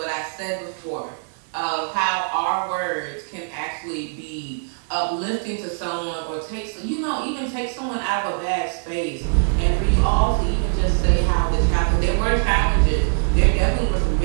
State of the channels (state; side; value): silent; left; digital silence